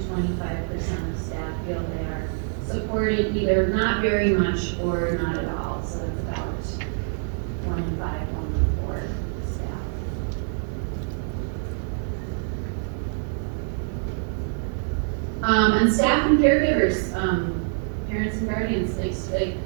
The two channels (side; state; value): left; silent; 61 dB below the other